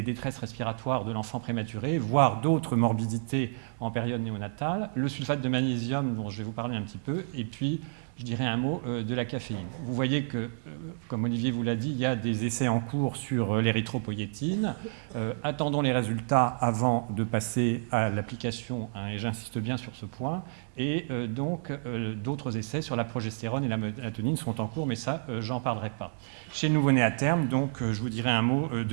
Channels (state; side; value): silent; left; digital silence